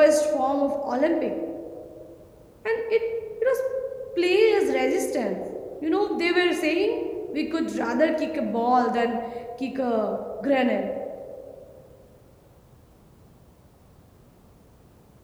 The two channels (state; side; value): identical; both; correlation 1.00